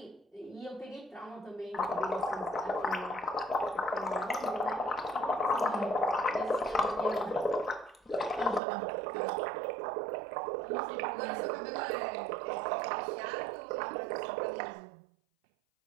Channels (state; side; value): drops out; left; at 8.6 s